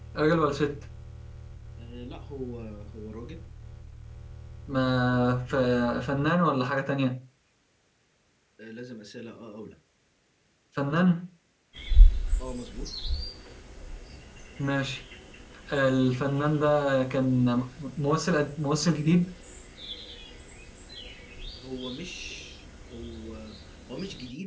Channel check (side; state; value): both; identical; correlation 1.00